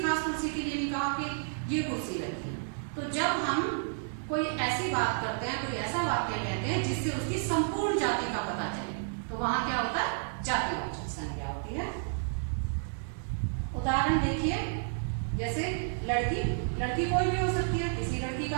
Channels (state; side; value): silent; left; digital silence